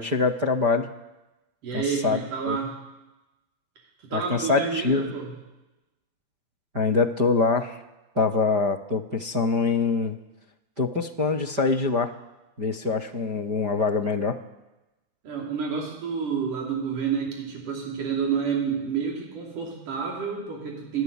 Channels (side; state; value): left; late; 5.0 ms